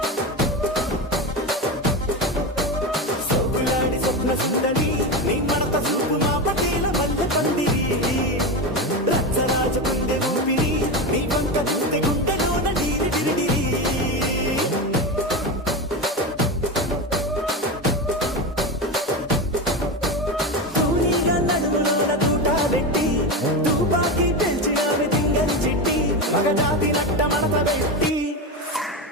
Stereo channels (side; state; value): both; normal; correlation 0.18